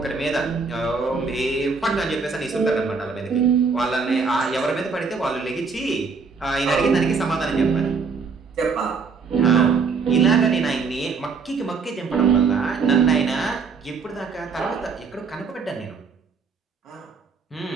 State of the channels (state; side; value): quieter; left; 5.0 dB